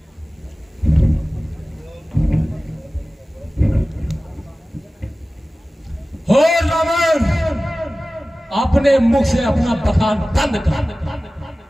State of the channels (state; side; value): normal; both; correlation 0.97